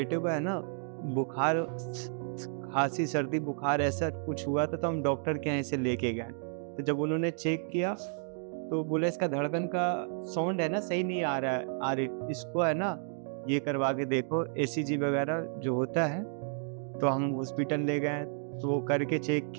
को है ना बुखार, खाँसी, सर्दी, बुखार ऐसा कुछ हुआ था, तो हम डॉक्टर के यहाँ इसे लेके गए। तो जब उन्होंने चेक किया तो बोले इसका धड़कन का साउंड है ना सही नहीं आ रहा है, इसको है ना ये करवा के देखो, ईसीजी वगैरह जो होता है। तो हम हॉस्पिटल ले गए, तो वो करके चेक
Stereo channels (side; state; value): left; silent; 57 dB below the other